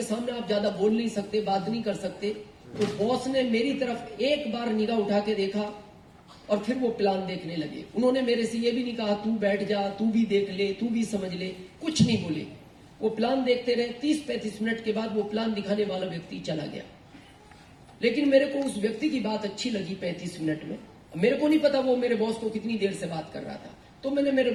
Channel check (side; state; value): both; identical; correlation 1.00